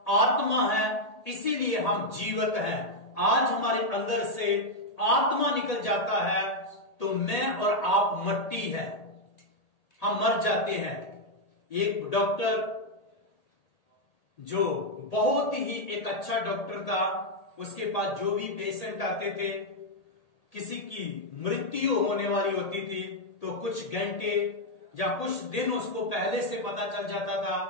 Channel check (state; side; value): late; right; 1.8 ms